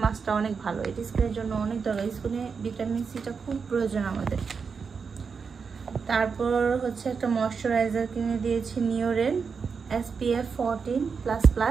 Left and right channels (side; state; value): left; quieter; 5.6 dB